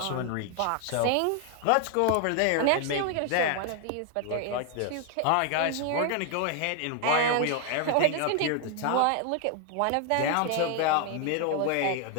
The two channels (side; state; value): both; different; correlation 0.00